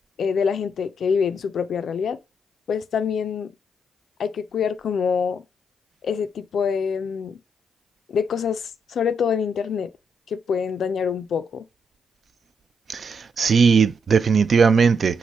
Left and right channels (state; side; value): normal; both; correlation 0.77